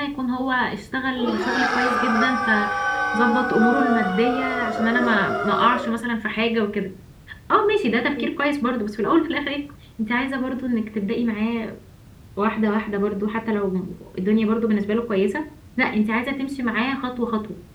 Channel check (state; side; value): identical; both; correlation 1.00